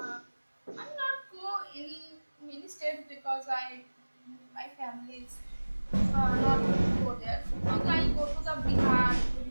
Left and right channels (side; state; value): both; inverted; correlation -1.00